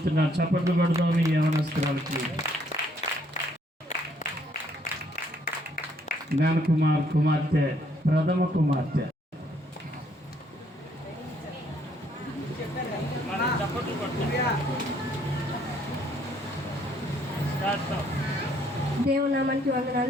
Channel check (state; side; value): normal; both; correlation 0.67